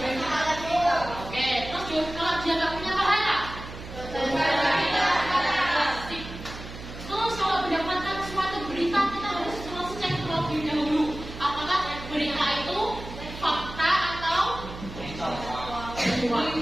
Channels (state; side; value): noise; right; hum, 12 dB below the sound